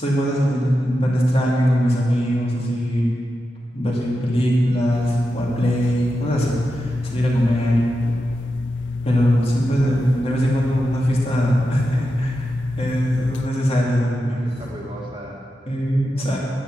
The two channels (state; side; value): normal; both; correlation 0.89